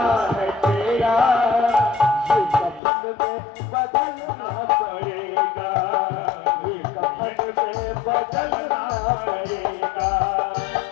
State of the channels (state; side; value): drops out; right; at 2.8 s